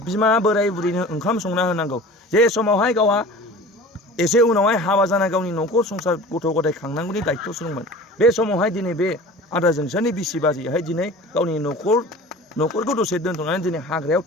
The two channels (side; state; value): both; normal; correlation 0.40